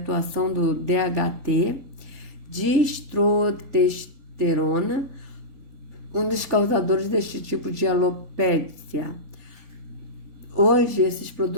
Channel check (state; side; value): late; left; 3.9 ms